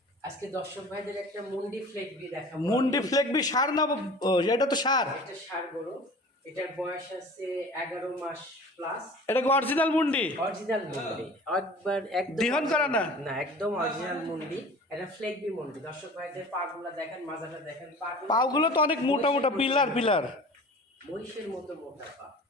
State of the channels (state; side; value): normal; both; correlation 0.42